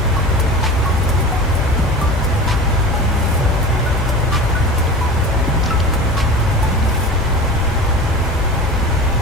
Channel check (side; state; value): both; normal; correlation 0.33